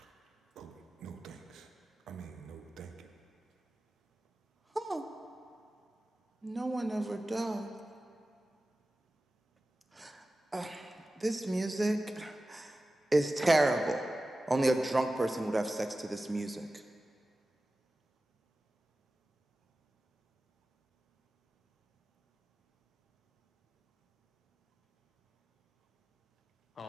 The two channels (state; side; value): normal; both; correlation 0.95